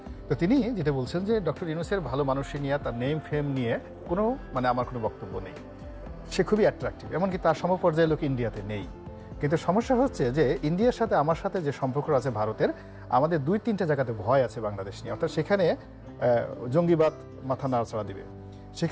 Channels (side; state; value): both; identical; correlation 1.00